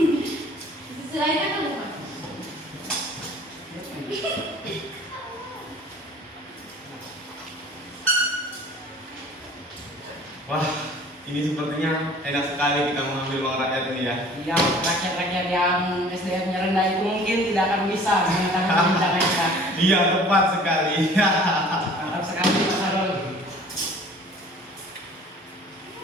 Sisi lain apa Bupati? Wah, ini sepertinya enak sekali kita mengambil uang rakyat ini ya. Yang rakyat-rakyat yang SDM-nya rendah itu mungkin tidak akan bisa mengetahui perbincangan kita. Iya, tepat sekali. Mantap sekali Mas Harul.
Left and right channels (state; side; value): normal; both; correlation 0.49